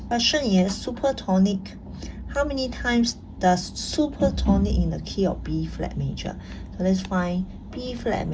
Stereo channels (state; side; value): identical; both; correlation 1.00